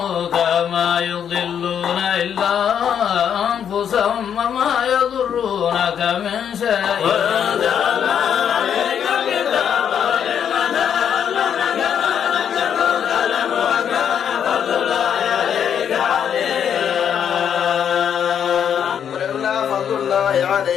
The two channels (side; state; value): right; quieter; 8.5 dB